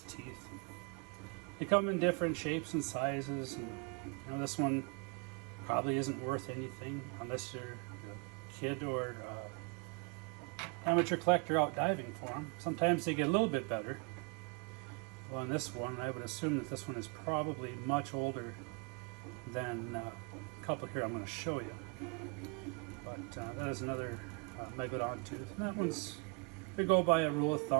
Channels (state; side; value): quieter; left; 34.3 dB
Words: teeth. They come in different shapes and sizes, and you know, this one probably isn't worth anything unless you're a kid or amateur collector out diving for them. Sometimes they get a little bit better. Well, in this one, I would assume that this one is probably much older than a couple here I'm going to show you. But that is another Megalodon tooth. And that one's, they go by a rule of